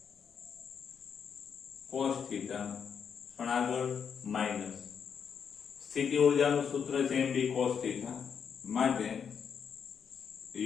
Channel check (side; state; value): right; quieter; 7.1 dB